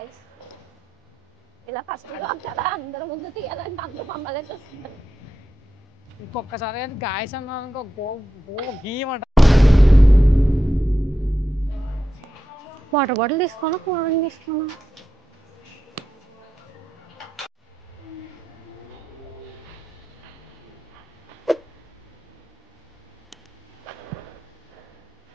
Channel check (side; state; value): both; normal; correlation 0.87